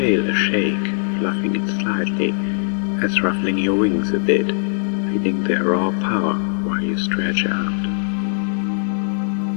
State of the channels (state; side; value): silent; right; digital silence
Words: a shake, fluffing it slightly, as ruffling your wings a bit, feeling their raw power while you stretch out.